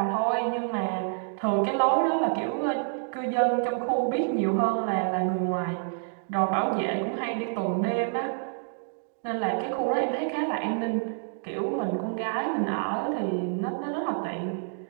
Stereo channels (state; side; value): silent; left; digital silence